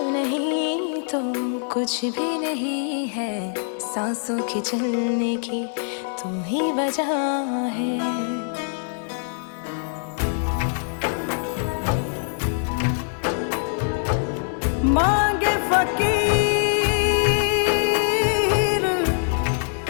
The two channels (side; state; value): right; silent; digital silence